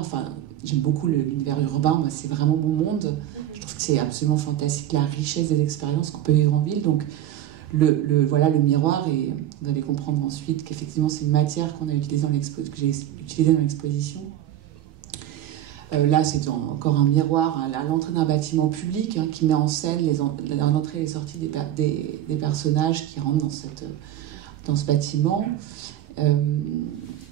j'aime beaucoup l'univers urbain. Moi, c'est vraiment mon monde. Je trouve que c'est absolument fantastique, la richesse des expériences qu'on peut vivre en ville. Donc, le miroir, et vous allez comprendre ensuite qu'effectivement, c'est une matière qu'on a utilisée que j'ai utilisée dans l'exposition. Là, c'est encore un miroir à l'entrée d'un bâtiment public qui met en scène l'entrée et les sorties des personnages qui rentrent dans ce bâtiment.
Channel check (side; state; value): left; quieter; 12.2 dB